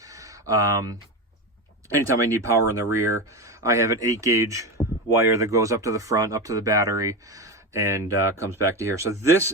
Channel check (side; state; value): both; normal; correlation 0.19